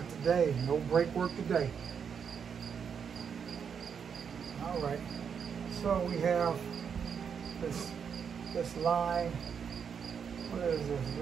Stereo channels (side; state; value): left; quieter; 7.0 dB